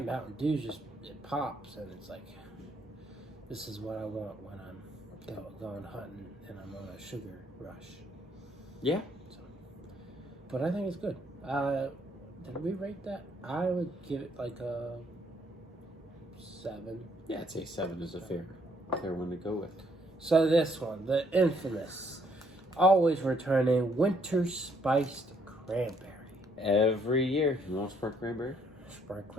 Dew just, it pops and it's like, this is what I want when I'm going hunting and I'm on a sugar rush. Yeah. So, but I think it's good. Did we rate that? I would give it like a 7. Yeah, I'd say 7 is a fair one to go with. So this one, the infamous, always returning Winter Spiced Cranberry. Every year. You want Sprite Cranberry? Sprite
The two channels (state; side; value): normal; both; correlation 0.68